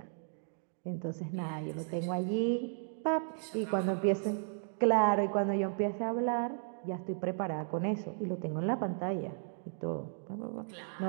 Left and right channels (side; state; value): left; silent; digital silence